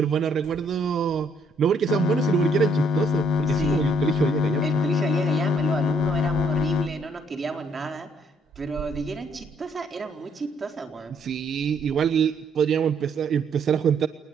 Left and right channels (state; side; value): normal; both; correlation 0.68